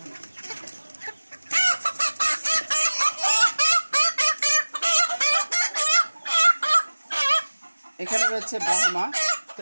রয়েছে ব্রাহ্মা। তো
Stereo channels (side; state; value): both; inverted; correlation -1.00